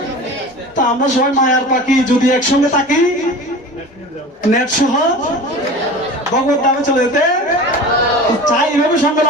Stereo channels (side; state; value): both; normal; correlation 0.36